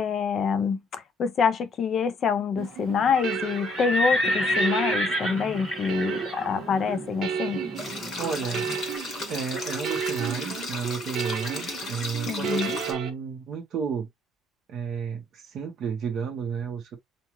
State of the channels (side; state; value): both; normal; correlation 0.65